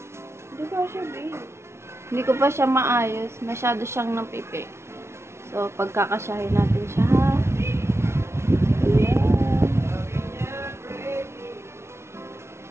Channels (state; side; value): late; left; 0.13 ms